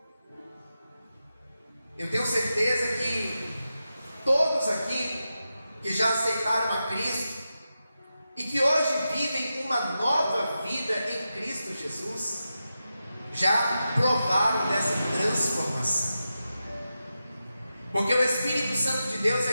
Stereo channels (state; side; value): inverted; both; correlation -0.90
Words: Eu tenho certeza que todos aqui que já aceitaram a Cristo e que hoje vivem uma nova vida em Cristo Jesus, já provaram dessa transformação. Porque o Espírito Santo de Deus é